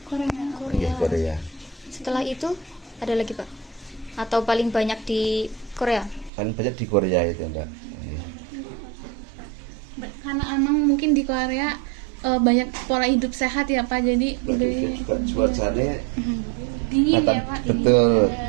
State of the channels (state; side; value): drops out; left; at 6.3 s